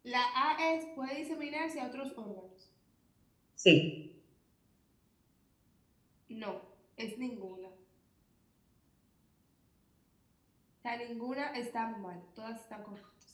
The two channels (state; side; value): identical; both; correlation 1.00